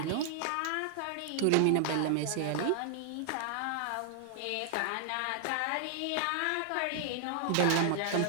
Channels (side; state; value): both; different; correlation 0.00